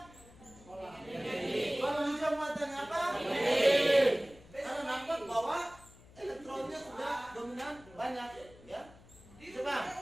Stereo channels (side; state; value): left; noise; hum, 23 dB below the sound